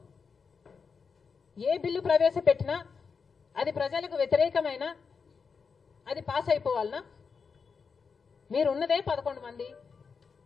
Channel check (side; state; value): right; quieter; 5.5 dB